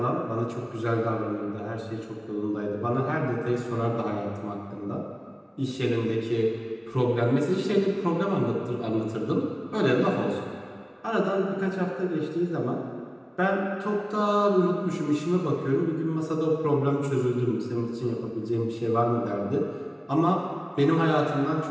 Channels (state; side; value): identical; both; correlation 1.00